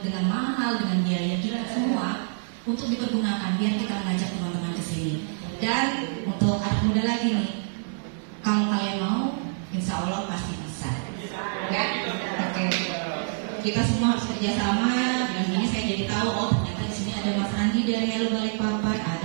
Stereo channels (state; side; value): silent; left; digital silence